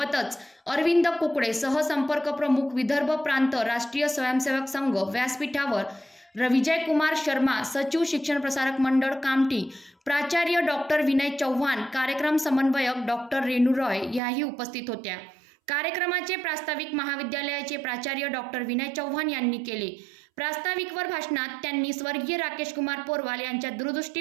अरविंद कुकडे, सहसंपर्क प्रमुख विदर्भ प्रांत राष्ट्रीय स्वयंसेवक संघ व्यासपीठावर, विजय कुमार शर्मा, सचिव शिक्षण प्रसारक मंडळ कामठी, प्राचार्य डॉक्टर विनय चव्हाण, कार्यक्रम समन्वयक डॉक्टर रेणू रॉय याही उपस्थित होत्या। कार्यक्रमाचे प्रास्ताविक महाविद्यालयाचे प्राचार्य डॉक्टर विनय चव्हाण यांनी केले। प्रास्ताविकवर भाषणात त्यांनी स्वर्गीय राकेश कुमार पोरवाल यांच्या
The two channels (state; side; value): drops out; left; at 14.2 s